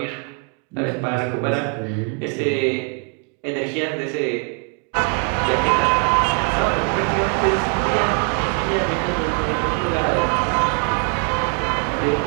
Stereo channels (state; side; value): quieter; left; 35.0 dB